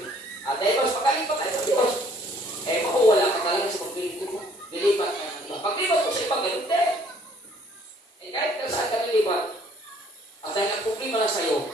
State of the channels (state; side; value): normal; both; correlation 0.60